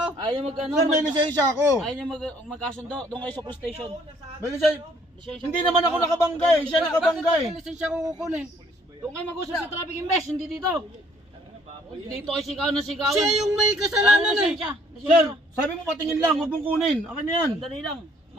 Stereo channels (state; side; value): normal; both; correlation 0.62